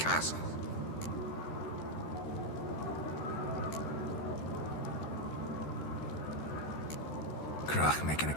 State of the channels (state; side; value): late; right; 13 ms